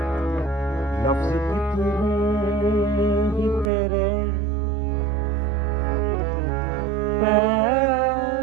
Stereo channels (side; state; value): left; drops out; at 3.7 s